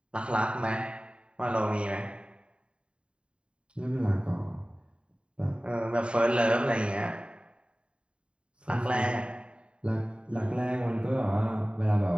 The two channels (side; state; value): left; late; 0.054 ms